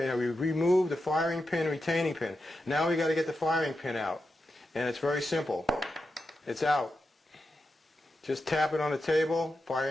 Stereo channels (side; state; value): both; normal; correlation 0.89